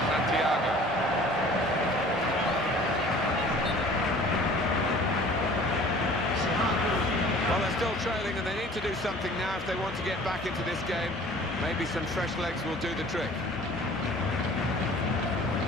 Santiago. Well, they're still trailing and they need to do something now if they want to get back into this game. Maybe some fresh legs will do the trick.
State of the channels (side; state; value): both; normal; correlation 0.48